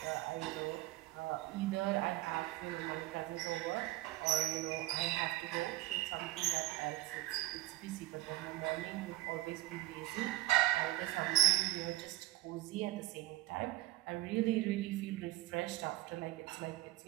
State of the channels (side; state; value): left; quieter; 16.9 dB